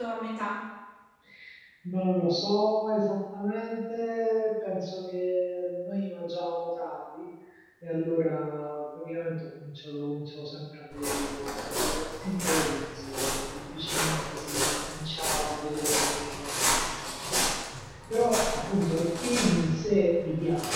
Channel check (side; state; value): both; identical; correlation 1.00